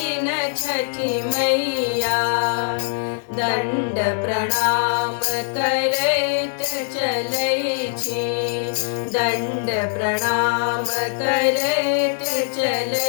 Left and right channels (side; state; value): right; silent; digital silence